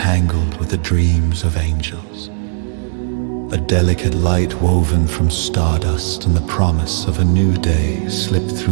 with the dreams of angels. A delicate light woven from stardust and the promise of a new day slipped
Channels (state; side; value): silent; left; digital silence